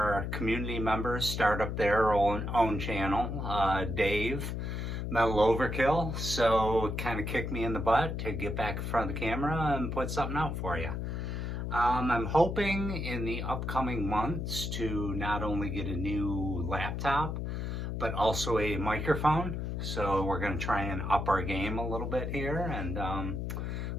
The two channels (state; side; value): noise; left; hum, 3 dB below the sound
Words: community members start up their own channel, Dave, Metal Overkill, so it kind of kicked me in the butt to get back in front of the camera and put something out for you. I'm hoping in the upcoming months to not only get a new laptop, but also a microphone. So we're going to try and up our game a little bit here and